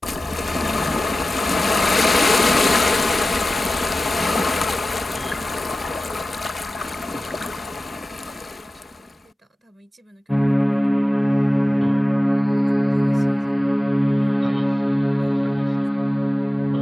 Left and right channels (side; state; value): both; normal; correlation 0.95